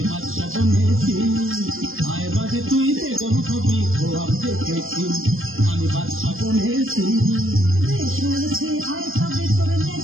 বাদশা বনেছি। আয় বাকি তুই বেগম হবি খোয়াব দেখেছি, আমি বাদশা বনেছি। বেশ হয়েছে, আয় তবে তোর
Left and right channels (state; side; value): late; left; 0.60 ms